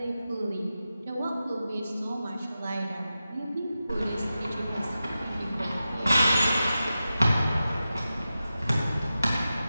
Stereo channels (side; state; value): both; inverted; correlation -0.92